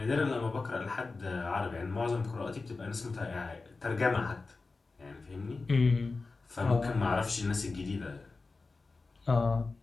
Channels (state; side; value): quieter; right; 3.9 dB